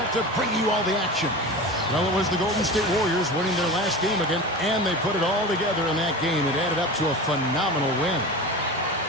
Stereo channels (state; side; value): normal; both; correlation 0.30